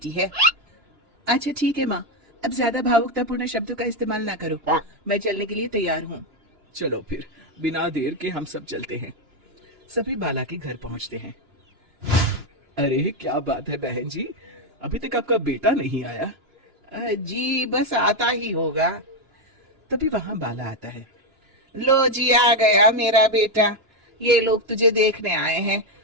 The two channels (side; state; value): left; late; 2.9 ms